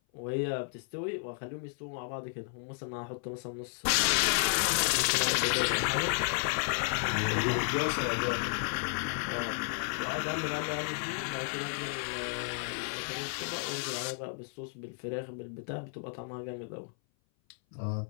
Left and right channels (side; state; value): right; silent; 56 dB below the other